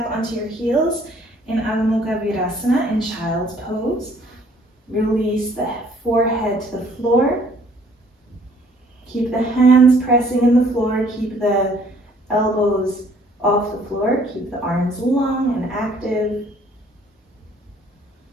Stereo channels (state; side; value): normal; both; correlation 0.60